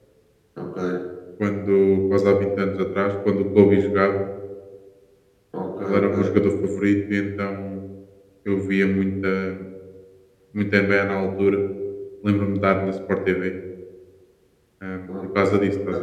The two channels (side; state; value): both; identical; correlation 1.00